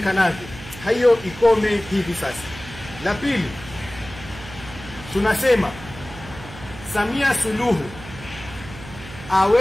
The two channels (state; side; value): noise; right; hum, 15 dB below the sound